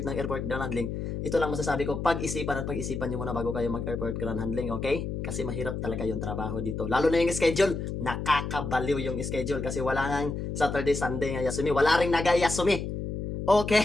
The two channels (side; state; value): left; noise; hum, 4 dB below the sound